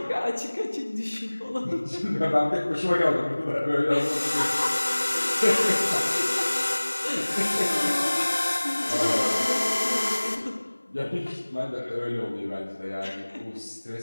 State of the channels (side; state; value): both; inverted; correlation -1.00